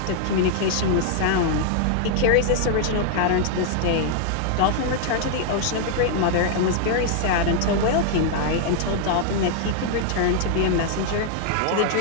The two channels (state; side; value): different; both; correlation 0.00